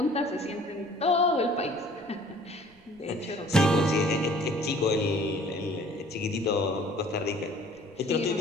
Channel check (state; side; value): noise; right; rumble, 29 dB below the sound